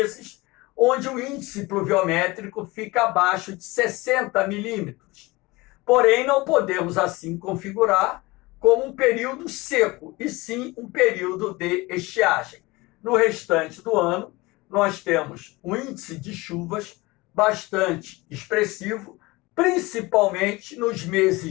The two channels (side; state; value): right; quieter; 22.2 dB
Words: onde o índice pluviométrico fica abaixo de 60 milímetros. Porém, não podemos assim configurar como um período seco, e sim um período de estiagem. No restante do ano, nós temos um índice de chuvas bastante expressivo, principalmente nos